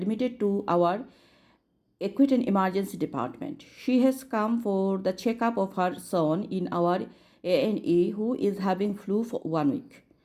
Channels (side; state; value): both; identical; correlation 1.00